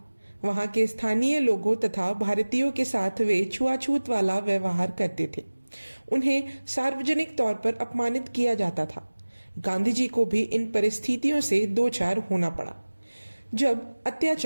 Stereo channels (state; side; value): inverted; both; correlation -1.00